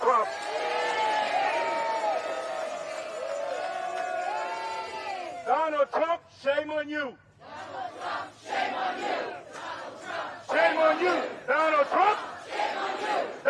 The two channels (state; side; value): identical; both; correlation 1.00